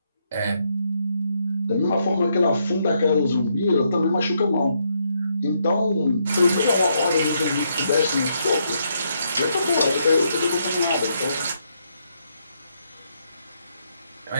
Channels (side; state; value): both; inverted; correlation -0.76